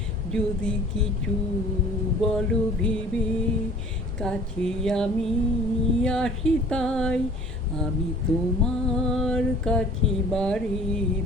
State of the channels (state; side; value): normal; both; correlation 0.50